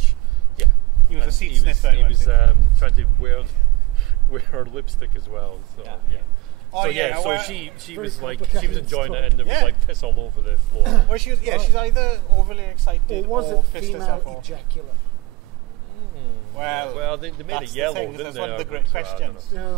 Yeah, he was a seat sniffer. He was trying to wear her lipstick as well. So so she was like she was enjoying it, and there was like piss all over the floor. Well, she's either overly excited or was it pissed female herself ejaculate? Well, they made it yellow, didn't they? That's one of the great questions.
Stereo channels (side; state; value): left; quieter; 20.9 dB